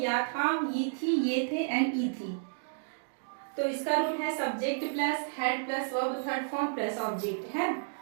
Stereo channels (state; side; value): silent; left; digital silence